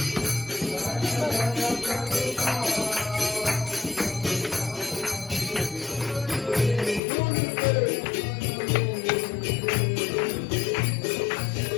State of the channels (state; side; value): drops out; right; at 7.0 s